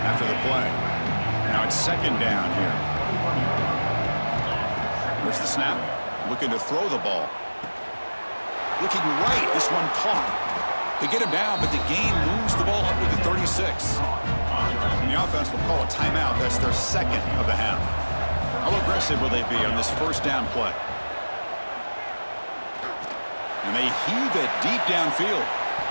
after the play. Now it's second down here. There's the snap. Looking to throw the ball. Looking right. This one caught. They get him down, but the game moves the ball up to the 36. And the offense will call a timeout. That's their second of the half. How aggressive will they be on this first down play? And they heave it deep downfield.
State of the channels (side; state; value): both; inverted; correlation -1.00